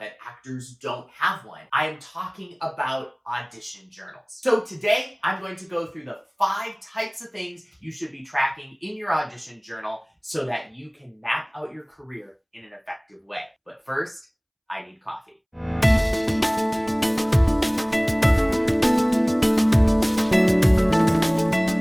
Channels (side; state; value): both; identical; correlation 1.00